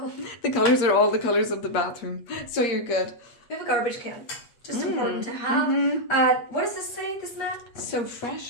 The colors are all the colors of the bathroom. So you're good. We have a garbage can. Just important to have. What does this say, this mat? So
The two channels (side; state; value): right; late; 8.5 ms